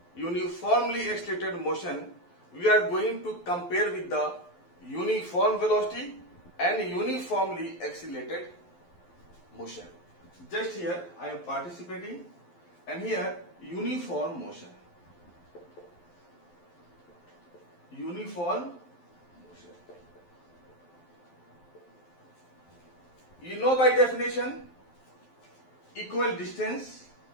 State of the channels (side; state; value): right; late; 12 ms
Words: uniformly accelerated motion, we are going to compare with the uniform velocity and uniformly accelerated motion. Just here I am participating, and here uniform motion. Uniform motion. You know by definition, equal distance